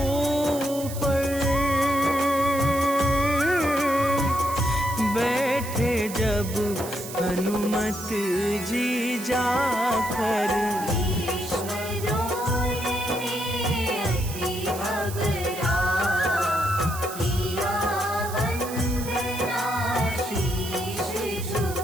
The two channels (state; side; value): noise; right; hiss, 11 dB below the sound